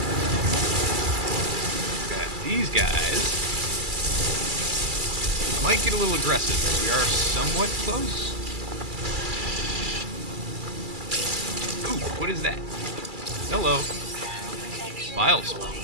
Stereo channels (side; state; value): left; late; 2.3 ms